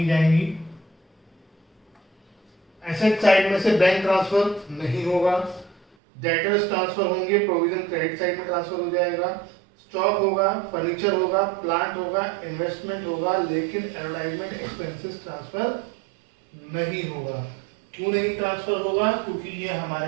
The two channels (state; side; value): drops out; left; at 5.8 s